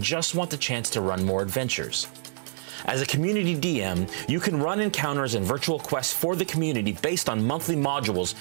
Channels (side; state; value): left; silent; digital silence